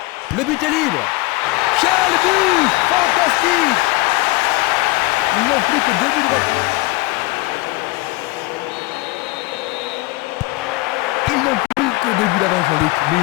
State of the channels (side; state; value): right; quieter; 22.1 dB